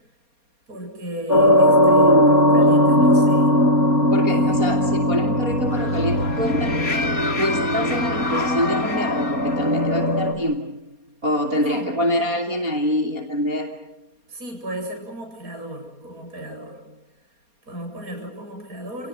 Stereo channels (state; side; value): late; left; 4.2 ms